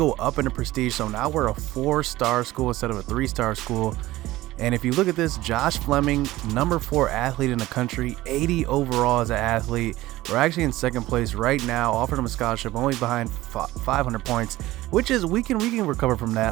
up in the prestige, so now we're a 4-star school instead of a 3-star school. And if you look at this, Josh Fleming, number 4 athlete in the country, 80 overall as an athlete. We're actually in second place right now, offered him a scholarship, only behind 500 points, which is we can recover from that.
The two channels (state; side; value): quieter; left; 17.2 dB